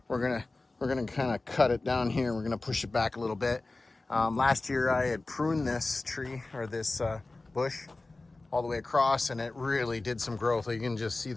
we're gonna kind of cut it down here. We're gonna push it back a little bit. Last year I had pruned this tree, or this bush, all the way across, and it really did some growth. You can just see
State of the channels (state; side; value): quieter; right; 3.2 dB